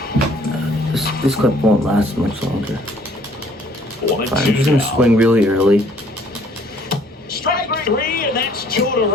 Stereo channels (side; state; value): both; normal; correlation 0.59